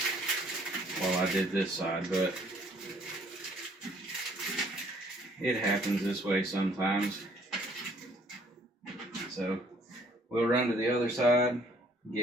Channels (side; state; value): both; normal; correlation 0.61